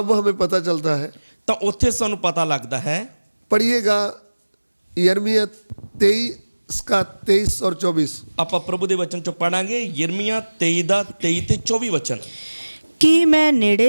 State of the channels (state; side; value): inverted; both; correlation -1.00